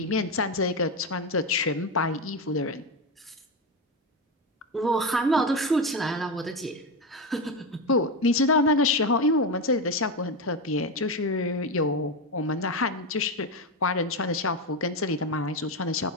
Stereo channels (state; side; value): normal; both; correlation 0.14